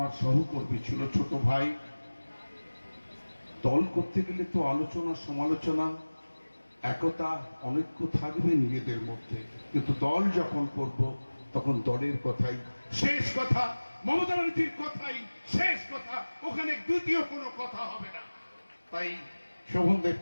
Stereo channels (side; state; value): both; inverted; correlation -1.00